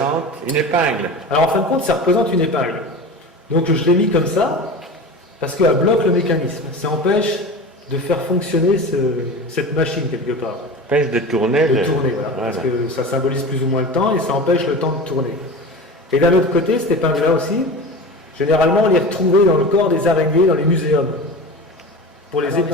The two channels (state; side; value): normal; both; correlation 0.31